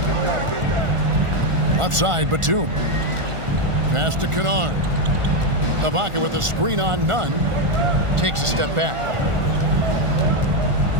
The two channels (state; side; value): late; left; 1.4 ms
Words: Left side, Batum. Pass to Kennard. Ibaka with a screen on Nunn. Takes a step back.